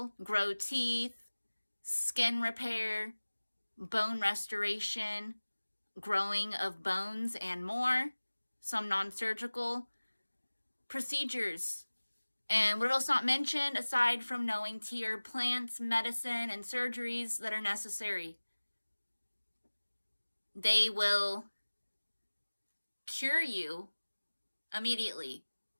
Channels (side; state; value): both; inverted; correlation -1.00